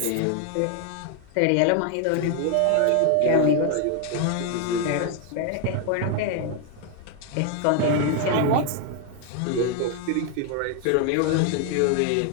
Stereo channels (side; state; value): both; different; correlation 0.01